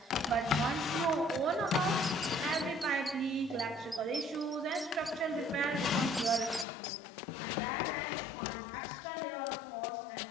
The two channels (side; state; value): right; drops out; at 6.7 s